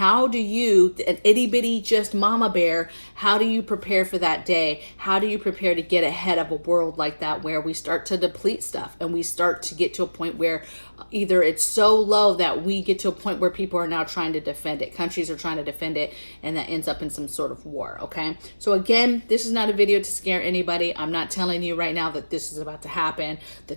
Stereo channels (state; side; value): inverted; both; correlation -1.00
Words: do you, an itty bitty just mama bear, how do you prepare for that day? How do you prepare to get ahead of a world like that where we start to deplete stuff and we start to get to a point where either it's so low that we get to a point where people are now trying to defend it, countries are trying to defend it, and that ends up in some sort of war, okay? So again, this is not a video to scare anybody. I'm not telling you right now that this is about to happen,